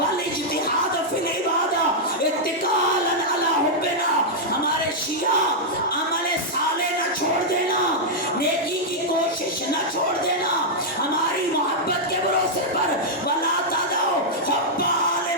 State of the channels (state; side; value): normal; both; correlation -0.06